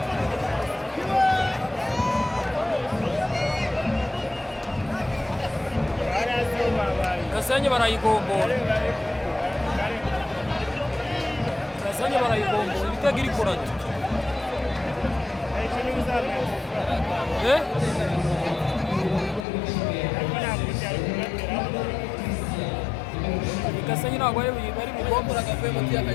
Gasenyi barayigombora. Gasenyi barayigombora ibitego iri kurata. Gasenyi ntabwo bari bugombora agavuye mu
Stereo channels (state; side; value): drops out; right; at 19.5 s